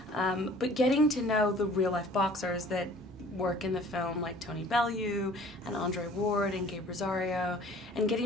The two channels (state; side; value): normal; both; correlation 0.51